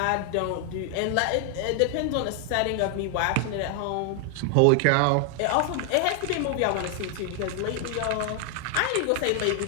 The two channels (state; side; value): different; both; correlation 0.00